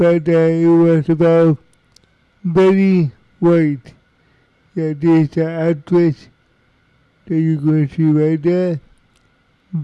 it was about Betty White. Yeah, this actress that you're going to see right there.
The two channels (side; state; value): both; identical; correlation 1.00